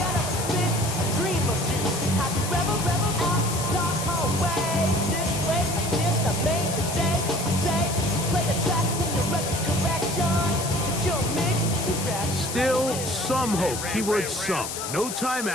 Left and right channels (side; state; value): left; noise; hiss, 6 dB below the sound